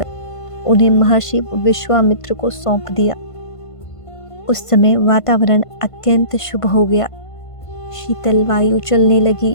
उन्हें महर्षि विश्वामित्र को सौंप दिया। उस समय वातावरण अत्यंत शुभ हो गया। शीतल वायु चलने लगी,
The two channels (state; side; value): late; right; 1.5 ms